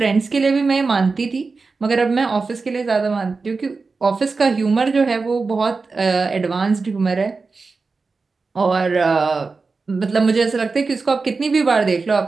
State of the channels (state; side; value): quieter; left; 4.2 dB